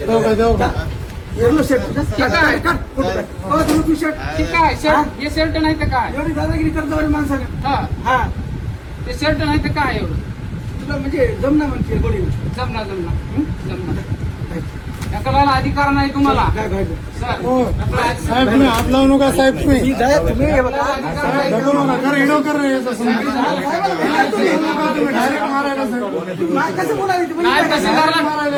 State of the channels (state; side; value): identical; both; correlation 1.00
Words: एवढं शर्ट ठीक आहे. धरलो तू शर्ट ठीक आहे शर्ट हे शर्ट नाही तर काय एवढी दादागिरी करतो आणि माणसाला हा हा ते शर्ट नाही तर काय एवढं तुला म्हणजे जमना म्हणते गोडी जमणार ढकलायला अधिकार नाही तुम्हाला काय घ्यायचं सर साहेब तुम्ही हात लावू नका साहेब तुम्ही तुम्ही हे बघा ढकलू नका कर हिडो कर रे याचं समजून. तुम्ही डायरेक्ट मारायला साहेब नाही, कसं बोलायचं तुम्ही? नाही तहसीलदारला